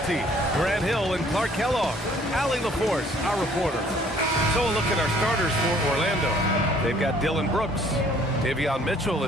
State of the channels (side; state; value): both; normal; correlation 0.58